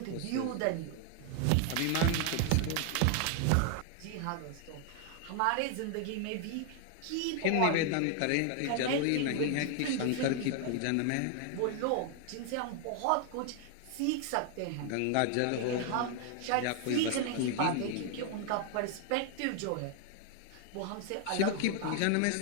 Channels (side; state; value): both; different; correlation 0.00